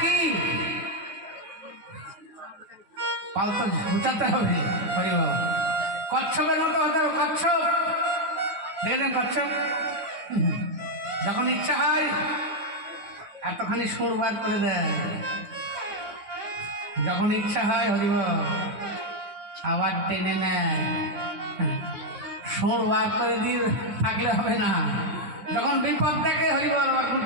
কি? পাল তো গুছাতে হবে। কচ্ছপের মতো হতে হবে। কচ্ছপ দেখেছেন? কচ্ছপ যখন ইচ্ছা হয় এতখানি সুর বার করে দেয়, যখন ইচ্ছা হয় হরিব আবার টেনে নেয়। সুর বার করে দিয়ে থাকলে হবে না। যখন বিপদ দেখে হরিবল বা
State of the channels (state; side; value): late; left; 9.3 ms